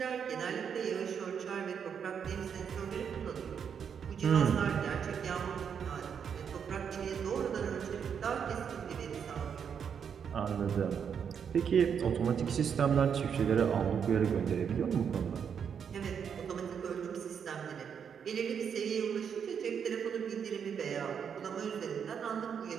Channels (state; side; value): quieter; left; 7.4 dB